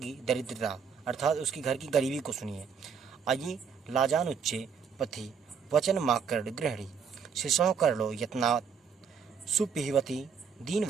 दरिद्रता अर्थात उसकी घर की गरीबी को सुनिए। अयि लाजानुच्चे पथि वचन माकर गृहणी शिशो करलो यत्नात् सुपिहवती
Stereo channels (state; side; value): quieter; left; 6.5 dB